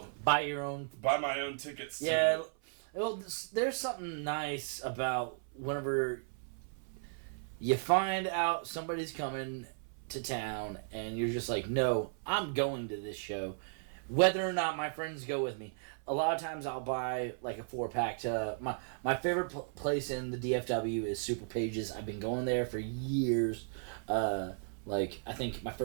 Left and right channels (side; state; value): left; silent; 54 dB below the other